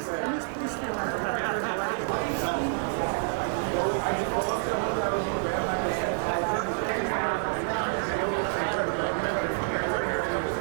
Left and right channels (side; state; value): left; silent; digital silence